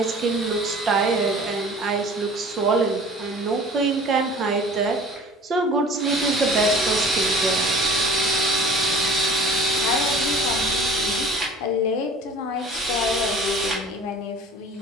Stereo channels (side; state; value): both; normal; correlation 0.45